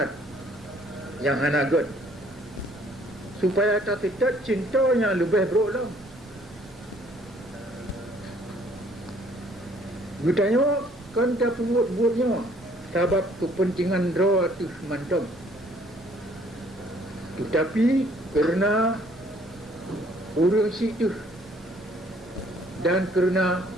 yang hanagot supaya tak tekat cintanya lebih buruk lah. Gedanya kan tak buat-buatnya sebab kepentingan draw tu mantap. Tetapi kerana urang situ dan kerana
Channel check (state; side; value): normal; both; correlation 0.61